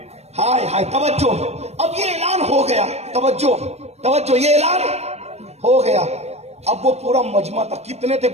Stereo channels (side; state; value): left; late; 0.31 ms